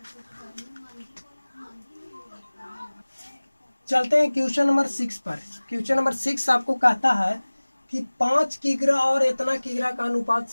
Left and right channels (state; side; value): inverted; both; correlation -1.00